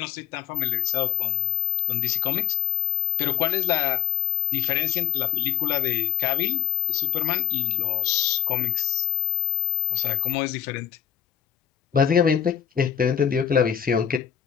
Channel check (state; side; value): quieter; right; 9.7 dB